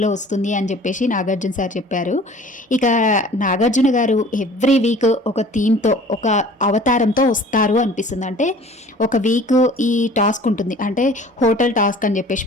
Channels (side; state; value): both; normal; correlation 0.48